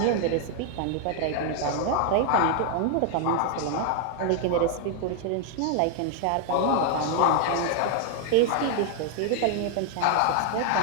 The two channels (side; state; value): both; different; correlation 0.00